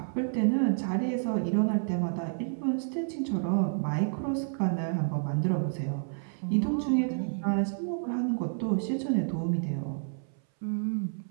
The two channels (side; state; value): left; silent; 58 dB below the other